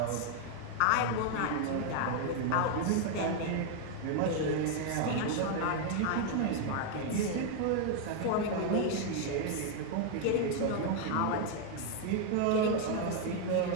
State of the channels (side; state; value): both; different; correlation 0.00